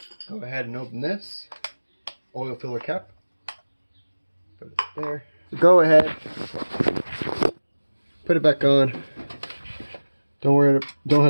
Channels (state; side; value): inverted; both; correlation -1.00